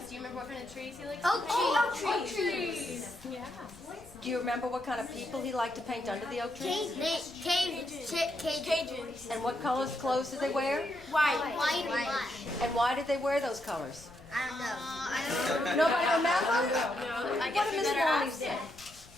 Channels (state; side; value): noise; left; rumble, 22 dB below the sound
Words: Do you remember what kind of trees he likes Oak to paint? trees. Oak trees. Yeah. Do you remember what kind of people he liked to paint under the oak tree? Cajuns. And what colors clothes did they wear? White and black. And why did they wear those colors? I don't know. Nobody remember? No, I What guess did we Miss better Lonnie ask say? him.